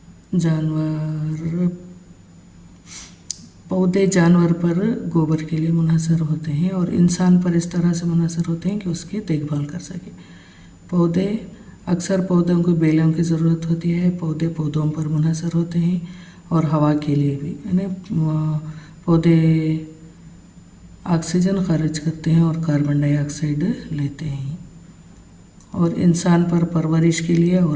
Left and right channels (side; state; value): both; identical; correlation 1.00